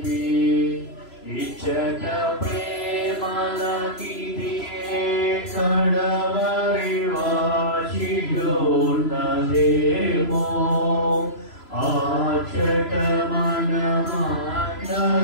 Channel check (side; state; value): right; late; 3.0 ms